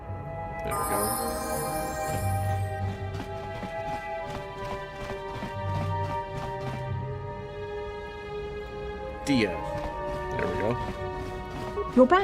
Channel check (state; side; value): identical; both; correlation 1.00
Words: There we go. Dia. There we go. You're